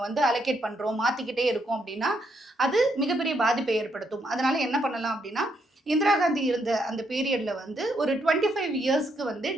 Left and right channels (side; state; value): both; normal; correlation 0.76